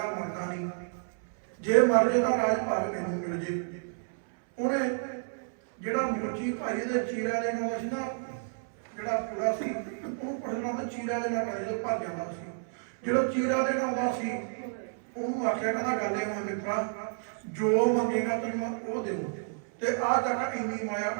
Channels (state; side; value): silent; left; 58 dB below the other